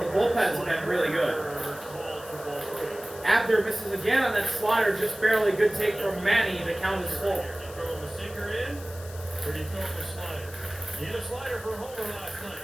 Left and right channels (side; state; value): left; noise; hiss, 17 dB below the sound